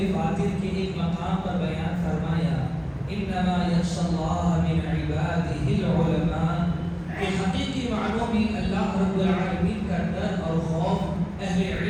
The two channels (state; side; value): identical; both; correlation 1.00